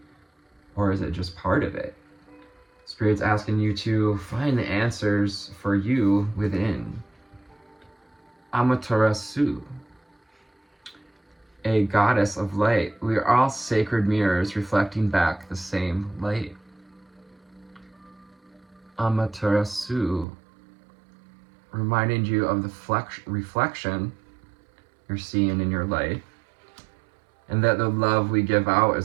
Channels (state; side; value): drops out; left; at 20.2 s